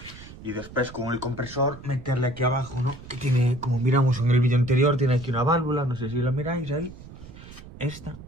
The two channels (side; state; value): right; noise; rumble, 16 dB below the sound